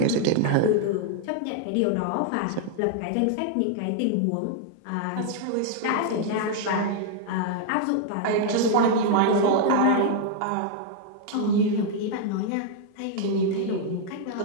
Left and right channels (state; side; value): different; both; correlation 0.00